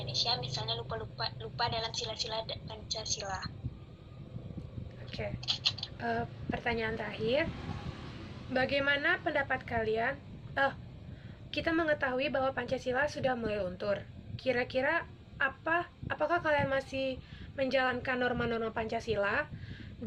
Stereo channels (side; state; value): both; identical; correlation 1.00